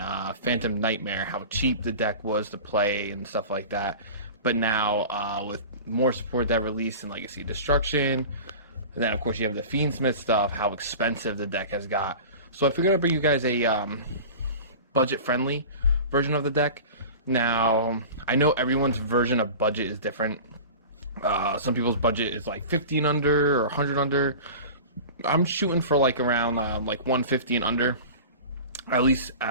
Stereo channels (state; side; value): inverted; both; correlation -0.35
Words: Phantom Nightmare. How cheap the deck was to play and stuff like that. But now with more support that released in Legacy Destruction, and then of course you have the Fiendsmith stuff, how expensive the deck has got. So I figured I'd bring you guys a budget-friendly version of the deck. Now, I know everyone's version of budget is different. Some people's budget is like 50 and under or 100 under. I'm shooting for like around like 150 and under, at least